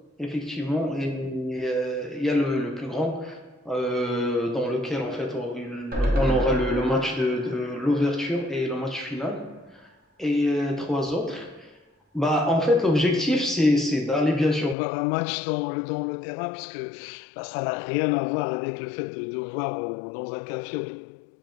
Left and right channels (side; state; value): right; drops out; at 14.8 s